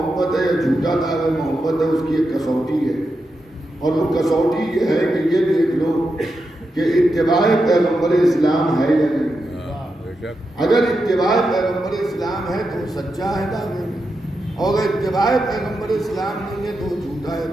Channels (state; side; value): normal; both; correlation 0.87